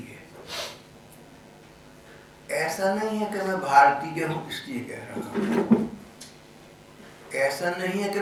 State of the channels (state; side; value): identical; both; correlation 1.00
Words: है। ऐसा नहीं है कि मैं भारतीय हूं इसलिए कह रहा हूं, ऐसा नहीं है कि